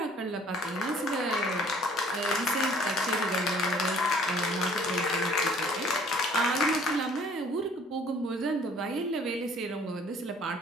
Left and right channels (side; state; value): both; normal; correlation 0.56